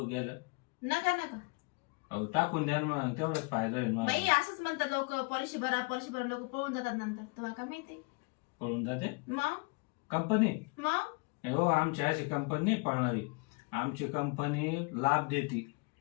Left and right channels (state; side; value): quieter; right; 29.4 dB